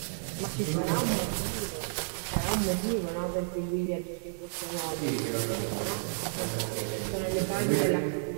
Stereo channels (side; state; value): left; silent; digital silence